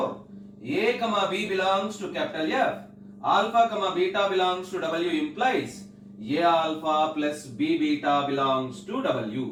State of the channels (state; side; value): identical; both; correlation 1.00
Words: A, B belongs to capital F, alpha, beta belongs to W implies A alpha plus B beta belongs to